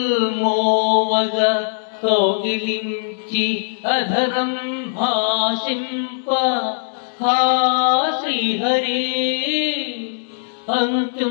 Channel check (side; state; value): right; silent; digital silence